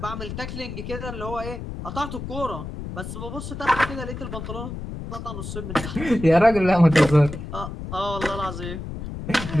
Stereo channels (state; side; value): noise; left; rumble, 8 dB below the sound